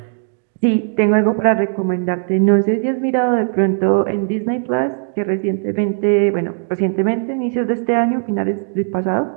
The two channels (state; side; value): silent; left; 68 dB below the other